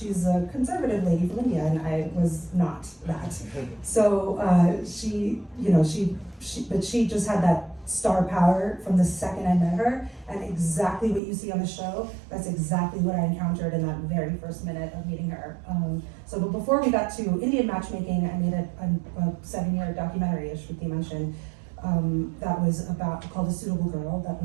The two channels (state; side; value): drops out; left; at 11.2 s